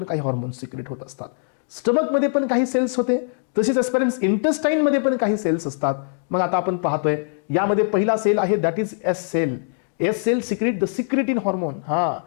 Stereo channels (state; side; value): silent; right; digital silence